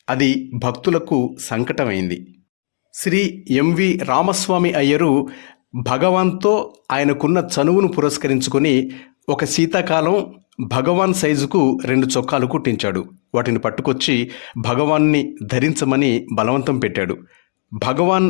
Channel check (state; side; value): silent; right; digital silence